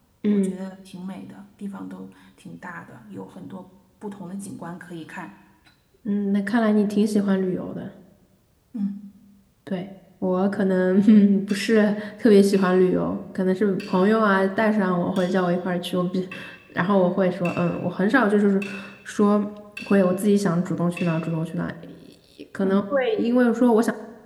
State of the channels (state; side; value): identical; both; correlation 1.00